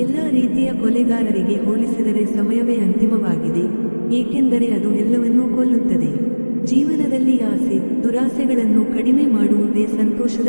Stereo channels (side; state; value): both; inverted; correlation -1.00